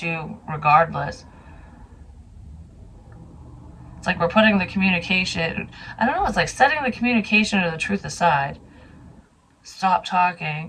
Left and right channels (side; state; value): both; identical; correlation 1.00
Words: regardless. It's like we're putting the communication, I don't know, it's like setting the communication or the truth aside. Stop